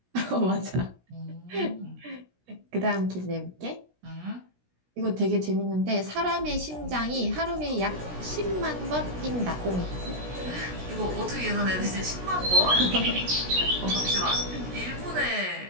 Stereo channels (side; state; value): left; late; 17 ms